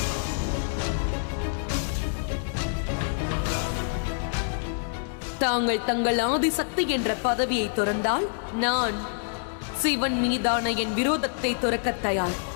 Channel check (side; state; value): right; silent; digital silence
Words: தாங்கள் தங்கள் ஆதிசக்தி என்ற பதவியை துறந்தால் நான் சிவன் மீதான என் விரோதத்தை துறக்க தயார்.